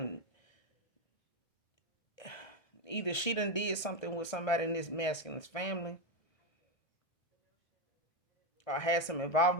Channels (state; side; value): late; right; 1.3 ms